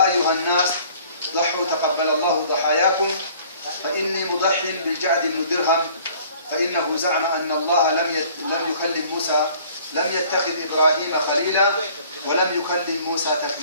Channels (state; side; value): inverted; both; correlation -0.54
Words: أيها الناس ضحوا تقبل الله ضحاياكم، فإني مضح بالجعد بن درهم، فإنه زعم أن الله لم يكلم موسى، لم يتخذ إبراهيم خليلا ولم يكلم موسى